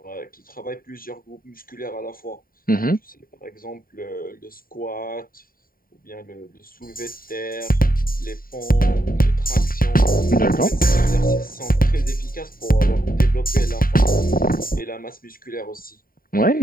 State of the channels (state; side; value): late; right; 0.42 ms